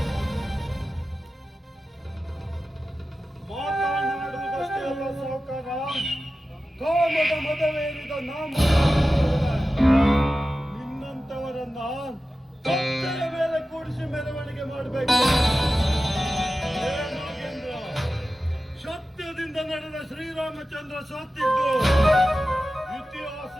ಮಾತನಾಡುವುದಷ್ಟೇ ಅಲ್ಲ ಸಾವುಕಾರ, ಕಾಮದ ಮದವೇರಿದ ನಾಮ ನಿನ್ನಂತವರನ್ನ ಕತ್ತೆಯ ಮೇಲೆ ಕೂಡಿಸಿ ಮೆರವಣಿಗೆ ಮಾಡಬೇಕು. ನಾಗೇಂದ್ರ, ಸತ್ಯದಿಂದ ನಡೆದ ಶ್ರೀರಾಮಚಂದ್ರ ಸತ್ತಿದ್ದು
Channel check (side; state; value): both; normal; correlation 0.94